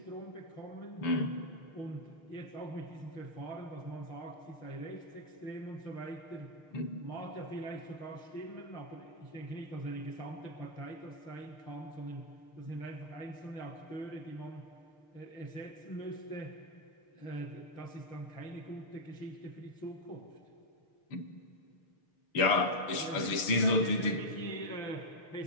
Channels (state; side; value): late; right; 6.5 ms